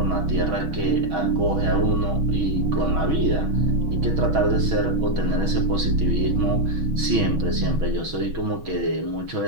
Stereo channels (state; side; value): late; left; 6.2 ms